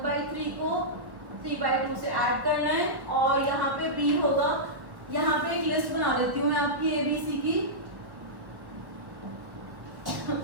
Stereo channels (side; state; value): left; late; 1.3 ms